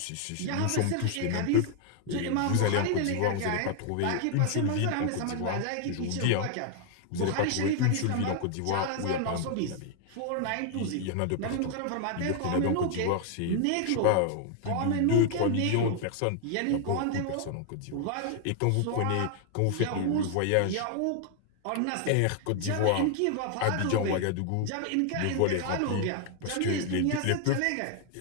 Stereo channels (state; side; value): different; both; correlation 0.00